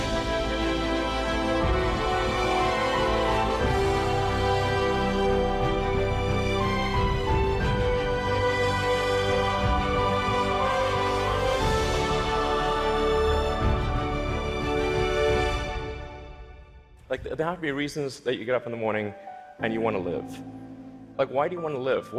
Like, there have to be reasons that you get up in the morning and you want to live. Like, why do you want to live?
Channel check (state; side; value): identical; both; correlation 1.00